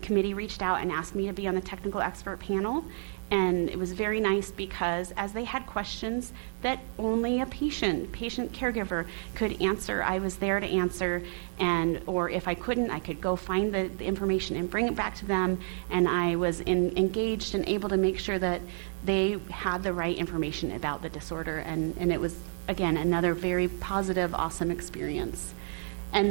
committee reached out and asked me to be on the technical expert panel. And it was very nice because as they had questions that only a patient caregiver could answer, I was there to answer. Or if I couldn't, I could go find the information and bring it back to them. And I was engaged and able to make sure that they had the right information about the disorder. And it was, again, another very positive, awesome experience. And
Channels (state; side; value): silent; left; digital silence